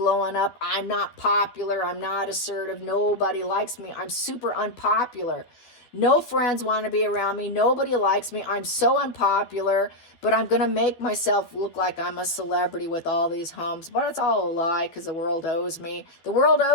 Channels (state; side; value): late; right; 12 ms